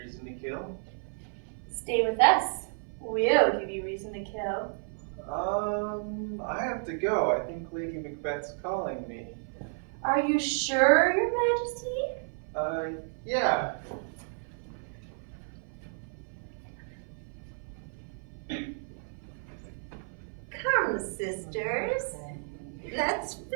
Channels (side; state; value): left; silent; 57 dB below the other